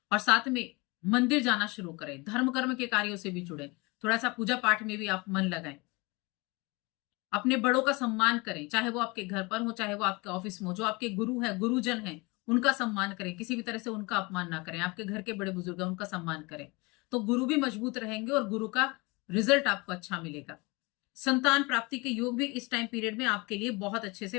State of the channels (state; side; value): quieter; right; 26.1 dB